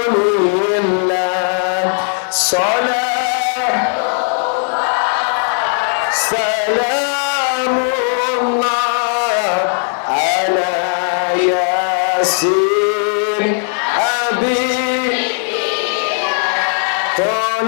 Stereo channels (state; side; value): silent; right; 58 dB below the other